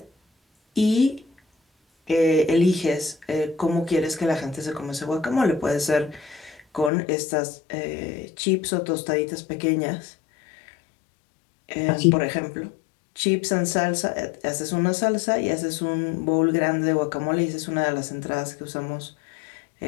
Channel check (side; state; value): right; drops out; at 6.9 s